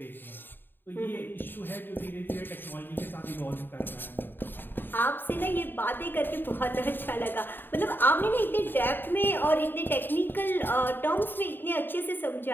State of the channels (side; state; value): right; late; 0.095 ms